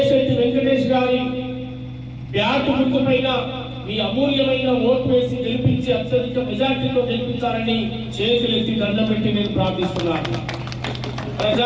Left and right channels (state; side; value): identical; both; correlation 1.00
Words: వెంకటేష్ గారి బ్యాటు గుర్తు పైన మీ అమూల్యమైన ఓటు వేసి గెలిపించి అత్యధిక మెజార్టీతో గెలిపించాలని చేతులెత్తి దండం పెట్టి నేను ప్రార్థిస్తున్నాను.